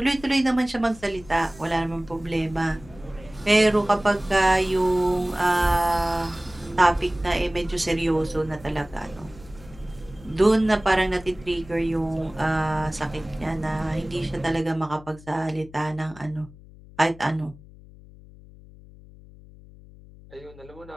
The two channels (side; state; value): left; noise; hum, 21 dB below the sound